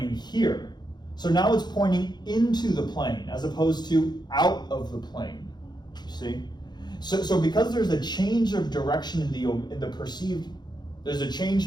here. So now it's pointing into the plane as opposed to out of the plane. You see? So because there's a change of direction there's a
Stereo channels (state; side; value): late; right; 0.21 ms